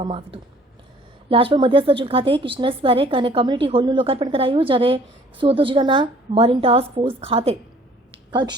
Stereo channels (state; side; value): normal; both; correlation 0.55